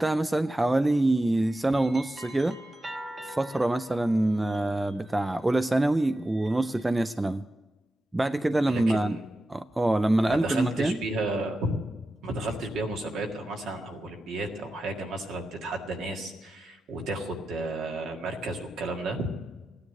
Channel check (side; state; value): both; normal; correlation 0.91